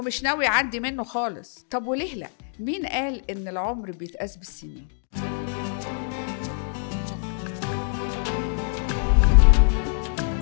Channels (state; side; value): silent; right; digital silence